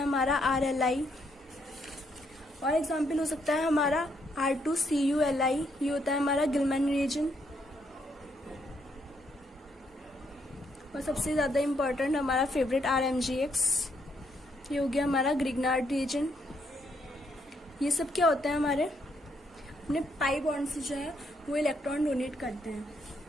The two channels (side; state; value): both; normal; correlation 0.74